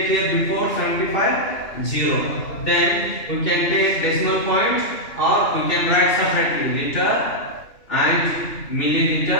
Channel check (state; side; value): late; right; 2.9 ms